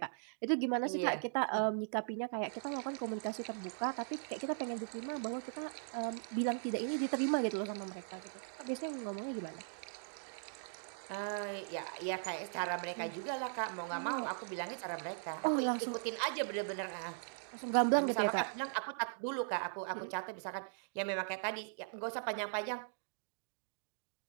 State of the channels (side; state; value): left; silent; digital silence